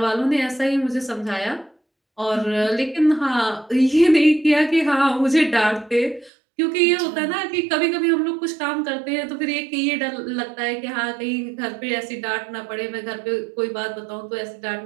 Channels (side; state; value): left; drops out; at 6.3 s